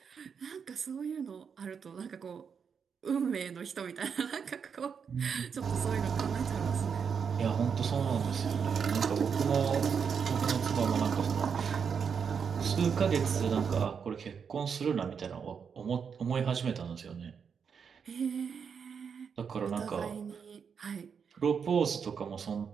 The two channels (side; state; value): left; quieter; 6.6 dB